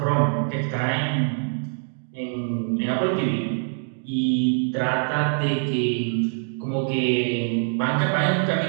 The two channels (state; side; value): silent; left; 63 dB below the other